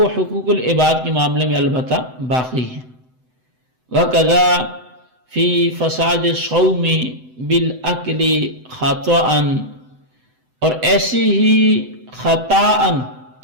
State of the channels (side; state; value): left; late; 7.9 ms